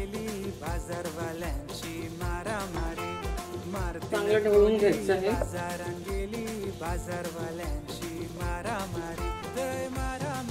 चांगलं ढवळून घ्यायचं आहे.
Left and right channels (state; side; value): identical; both; correlation 1.00